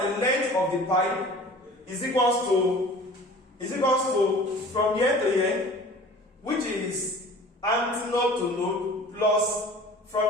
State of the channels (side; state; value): both; normal; correlation 0.44